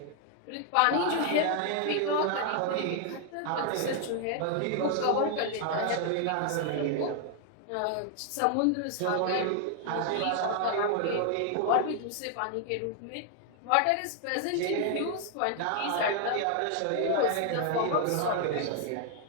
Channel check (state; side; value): different; both; correlation 0.00